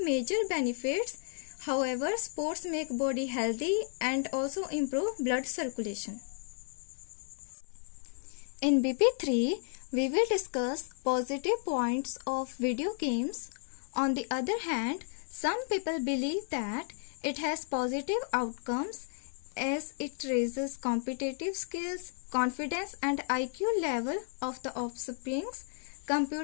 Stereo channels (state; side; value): silent; right; 56 dB below the other